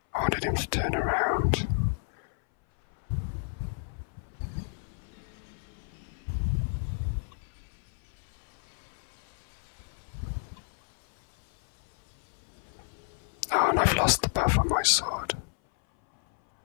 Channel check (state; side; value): silent; right; 57 dB below the other